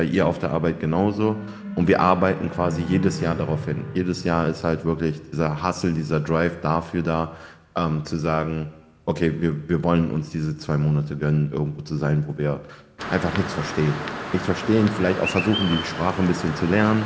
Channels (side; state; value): both; identical; correlation 1.00